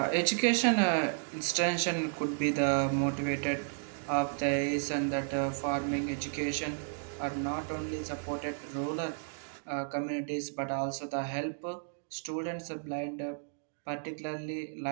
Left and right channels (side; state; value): left; silent; digital silence